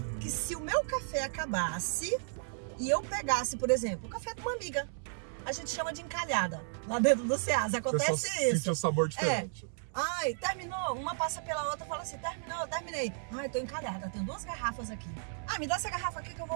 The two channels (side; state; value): left; silent; 55 dB below the other